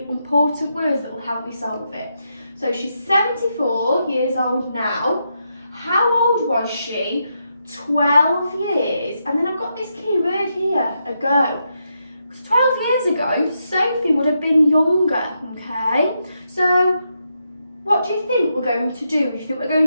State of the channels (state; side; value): inverted; both; correlation -0.82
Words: important words that will help me solve it. So she's 74 years old now. How old was she 12 years? And then I've got this key word here, ago. Because 12 years ago, Sophie would have been younger, okay? So what do you think we're going to do? Do you think we're